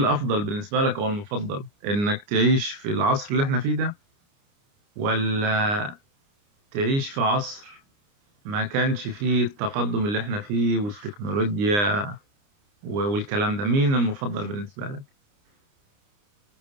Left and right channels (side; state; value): left; late; 29 ms